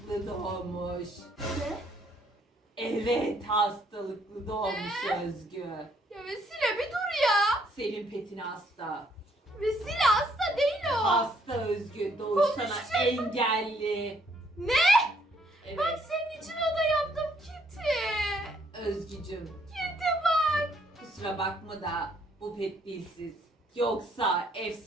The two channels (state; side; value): normal; both; correlation 0.68